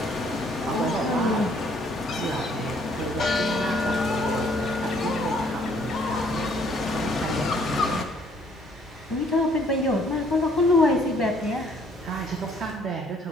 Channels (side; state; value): both; normal; correlation 0.63